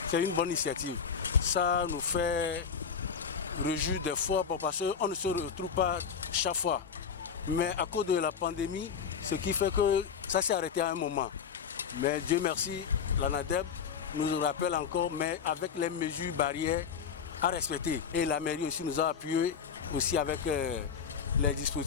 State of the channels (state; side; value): quieter; right; 6.8 dB